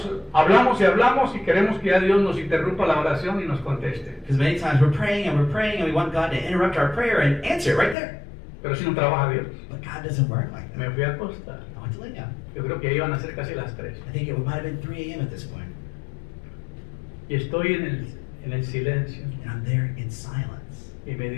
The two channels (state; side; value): drops out; right; at 8.0 s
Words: hablamos y queremos que ya Dios nos interrumpa la oración y nos conteste. Because many times we're praying and we want God to interrupt our prayer and answer it right there. Pero si no trabaja Dios, But God doesn't work like that. me fui a acostar. I went to lay down. Yo creo que iban a ser casi las 3. I think it might have been 3 a.m. at this point. Y estoy en el silencio. And I'm there in silence. Y me